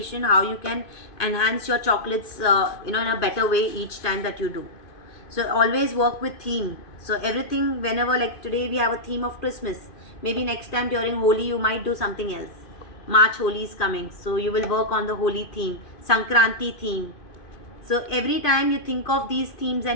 how you can enhance your chocolates in a better way each time that you do. So always work with theme. So everything, whenever, like today we have a theme of Christmas, maybe next time during Holi you might do something else. March Holi is coming, so you will work on the Holi theme, Sankranti theme. So every time you think of these themes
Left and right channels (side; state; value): right; late; 2.5 ms